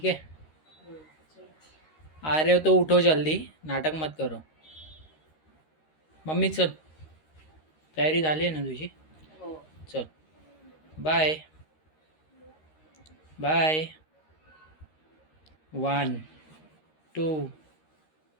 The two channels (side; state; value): right; late; 13 ms